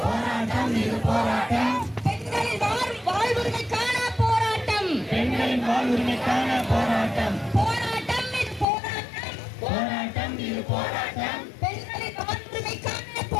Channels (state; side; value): drops out; right; at 8.7 s